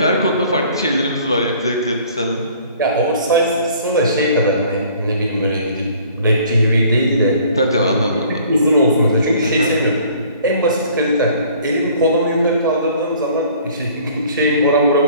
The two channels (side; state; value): both; inverted; correlation -0.54